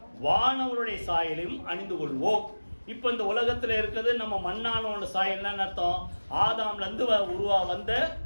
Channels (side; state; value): both; inverted; correlation -1.00